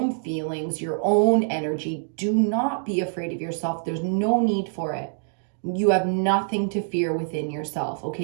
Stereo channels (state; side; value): silent; left; digital silence